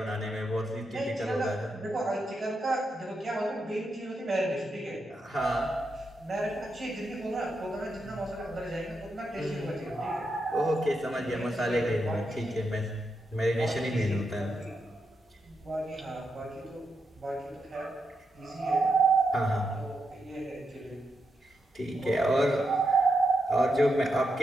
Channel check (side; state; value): both; normal; correlation 0.84